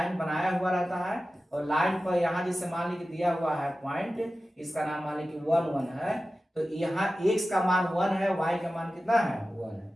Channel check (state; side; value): normal; both; correlation 0.94